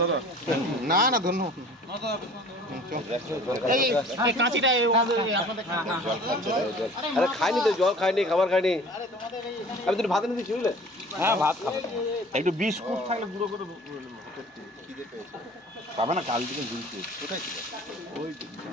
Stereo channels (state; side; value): normal; both; correlation 0.46